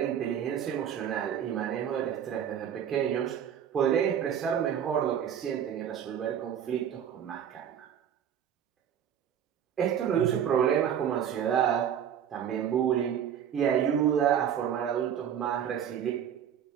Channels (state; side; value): quieter; left; 9.0 dB